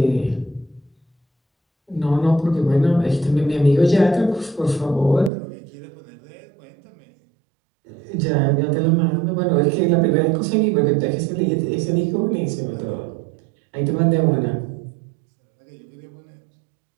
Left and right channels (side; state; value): left; drops out; at 5.3 s